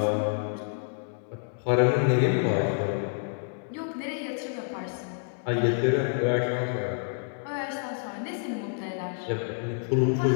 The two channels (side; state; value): right; silent; 59 dB below the other